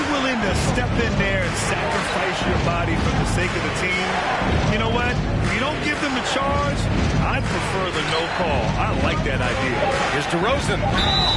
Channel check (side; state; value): both; identical; correlation 1.00